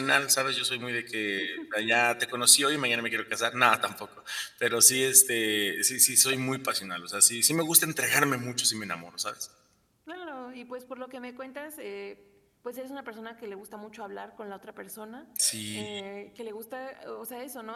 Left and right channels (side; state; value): both; identical; correlation 1.00